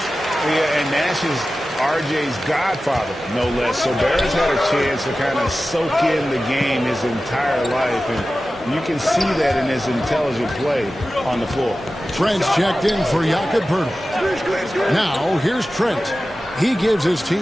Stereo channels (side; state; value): both; normal; correlation 0.95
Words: Yeah, and Nash is R.J.'s godfather, no less. So Barrett's had a chance to kind of soak in the game his entire life, and you can see that in his intelligent play on the floor. Trent's checked in for Jakob Poeltl. Now, here's Trent. He gives his